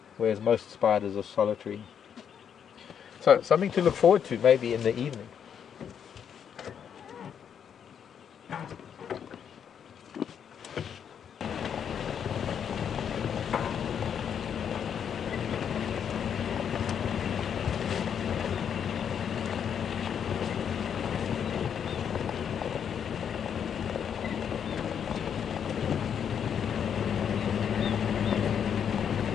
whereas most spiders are solitary. So something to look forward to maybe in the evening.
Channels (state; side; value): quieter; right; 8.1 dB